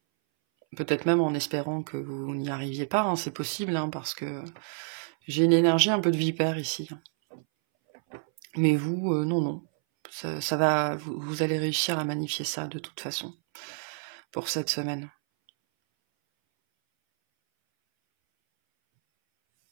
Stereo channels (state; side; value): silent; left; 59 dB below the other